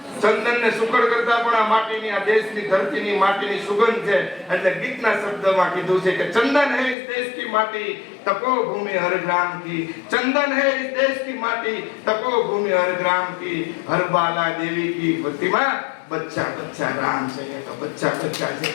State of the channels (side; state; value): right; drops out; at 7.0 s